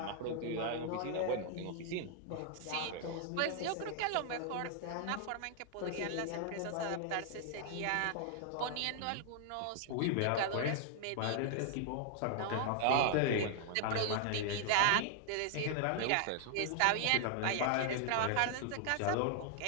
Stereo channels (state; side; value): different; both; correlation 0.00